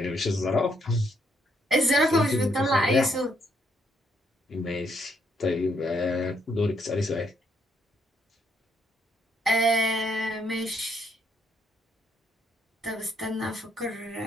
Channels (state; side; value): normal; both; correlation 0.73